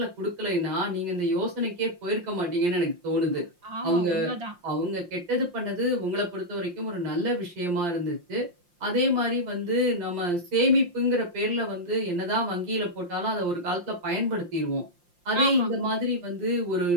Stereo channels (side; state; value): left; late; 5.7 ms